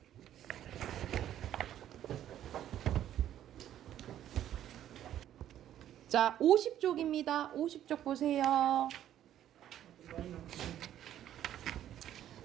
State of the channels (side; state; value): left; quieter; 11.4 dB